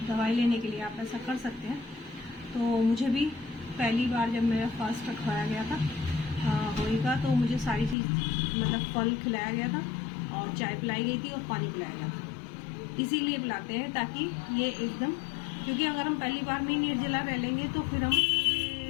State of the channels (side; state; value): right; drops out; at 8.0 s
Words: दवाई लेने के लिए आप ऐसा कर सकते हैं। तो मुझे भी पहली बार जब मेरा फास्ट रखवाया गया था होएगा, तो मुझे सारी चीज़ मतलब फल खिलाया गया था और चाय पिलाई गई थी और पानी पिलाया गया था। इसीलिए पिलाते हैं ताकि ये एकदम, क्योंकि अगर हम पहली बार में ही निर्जला रह लेंगे तो फिर हम